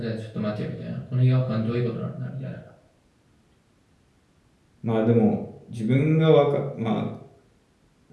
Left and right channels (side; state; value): both; identical; correlation 1.00